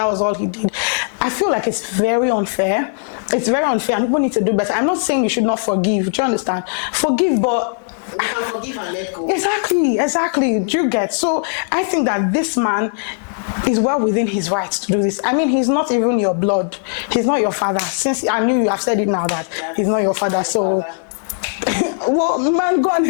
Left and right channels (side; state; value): right; silent; digital silence